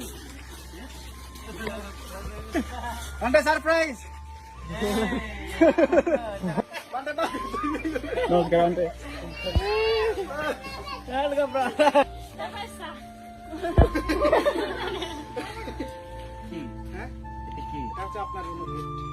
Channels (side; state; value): both; identical; correlation 1.00